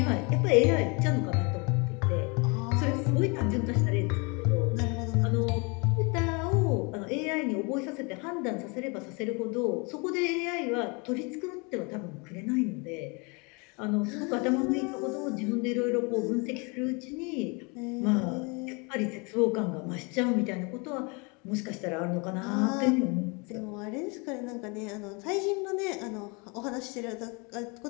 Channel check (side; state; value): right; quieter; 30.7 dB